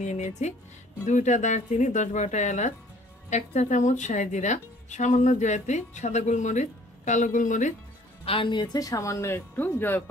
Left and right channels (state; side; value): normal; both; correlation 0.56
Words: নিয়ে নিয়েছি, 2টা দারচিনি, 10-12টা এলাচ, 1 চা চামচ শাহি জিরা, সামান্য জয়ত্রী, সাদা গোলমরিচ, কালো গোলমরিচ, আর নিয়েছে সামান্য একটু